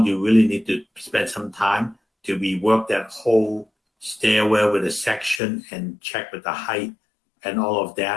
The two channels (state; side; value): drops out; right; at 5.4 s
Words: you really need to spend some time to rework that whole stairwell with a section and check with the height and all of